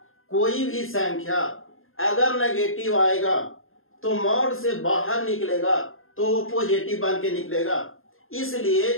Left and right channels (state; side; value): late; right; 0.60 ms